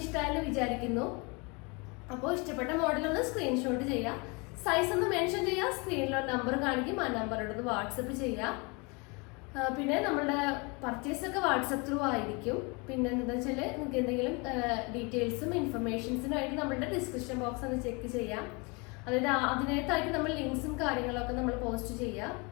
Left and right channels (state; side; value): quieter; right; 29.6 dB